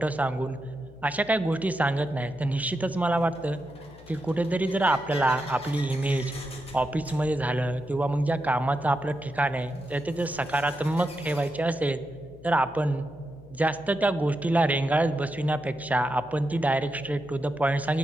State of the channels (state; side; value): noise; left; hum, 21 dB below the sound